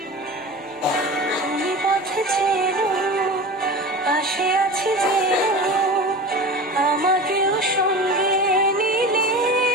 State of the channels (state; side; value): normal; both; correlation 0.32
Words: তুমি পথে চেনো, পাশে আছি যেনো, আমাকেও সঙ্গে নিলে